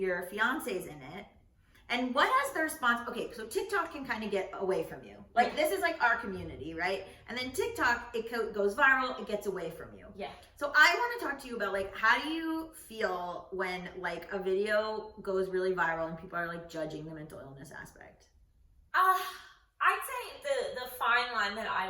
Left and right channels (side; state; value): both; identical; correlation 1.00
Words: fiance's in it. And what has the response? Okay, so TikTok can kind of get away from you. Like, this is like our community, right? And then TikTok, it goes viral, it gets away from you. Yeah. So I want to talk to you about, like, how do you feel when like a video goes really viral and people are like judging the mental illness aspect? I'd say the fine line that